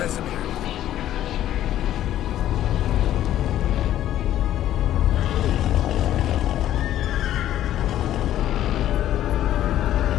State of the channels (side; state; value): right; quieter; 12.4 dB